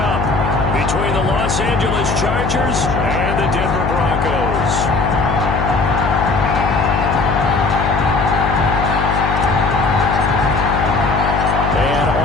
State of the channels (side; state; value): left; noise; hum, 2 dB below the sound